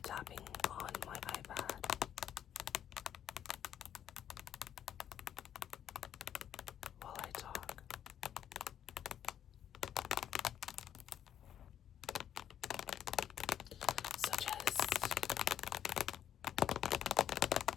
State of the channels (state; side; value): quieter; right; 10.0 dB